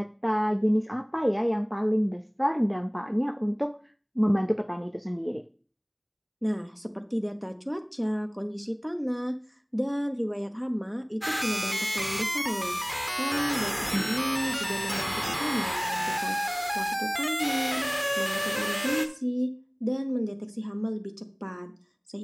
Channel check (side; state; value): both; identical; correlation 1.00